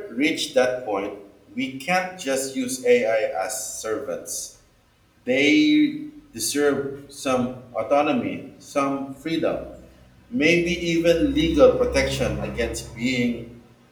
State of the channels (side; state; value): both; identical; correlation 1.00